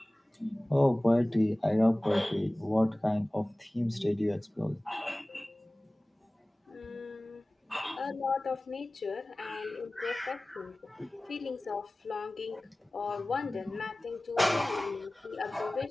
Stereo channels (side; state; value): both; normal; correlation 0.98